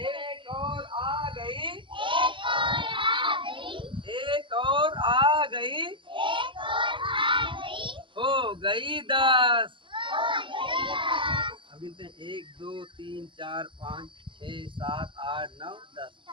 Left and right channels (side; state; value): left; late; 0.24 ms